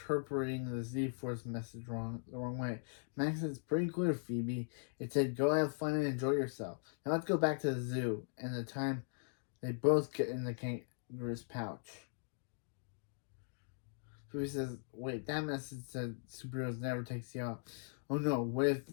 the Z-Force message the wrong way. Max says, pretty clear, Phoebe. It said, go have fun and enjoy yourself. Now let's go back to the zoo. And the time they both get in the kangaroo's pouch. Phoebe says, wait, that message said superheroes never take you out. Oh no, what if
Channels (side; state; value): right; silent; digital silence